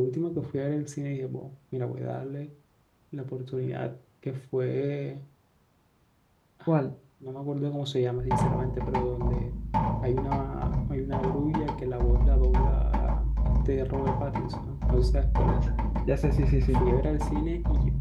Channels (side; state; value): both; identical; correlation 1.00